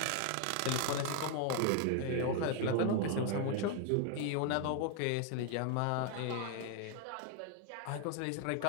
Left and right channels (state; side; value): different; both; correlation 0.00